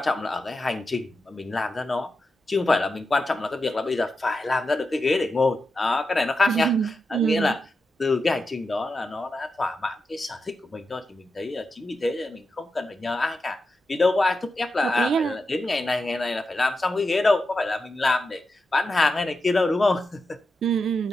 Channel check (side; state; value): both; normal; correlation 0.89